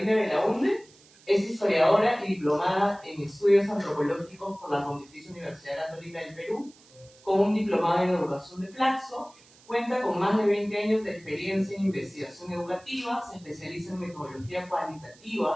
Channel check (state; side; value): noise; right; hiss, 27 dB below the sound